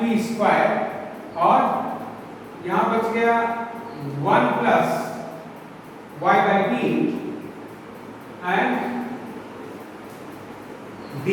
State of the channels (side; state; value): both; identical; correlation 1.00